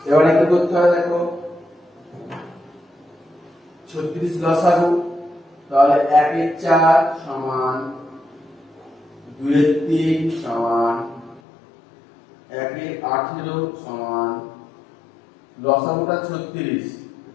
এবারে কি করতে হয় দেখো, 36 লসাগু, তাহলে 1 এর 4 সমান 2 এর 3 সমান 1 এর 18 সমান লসাগুটা 36,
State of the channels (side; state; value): right; drops out; at 11.4 s